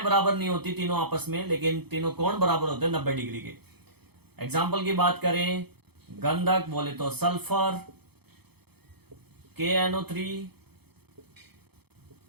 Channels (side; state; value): left; late; 0.97 ms